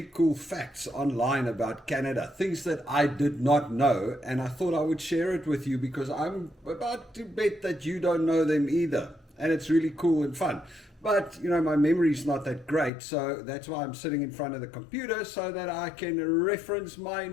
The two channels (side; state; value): right; drops out; at 12.9 s